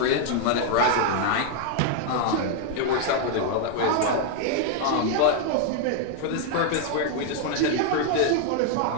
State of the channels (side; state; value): both; different; correlation 0.00